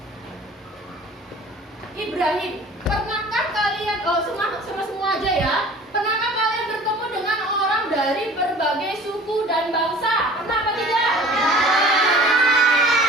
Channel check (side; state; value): both; normal; correlation 0.46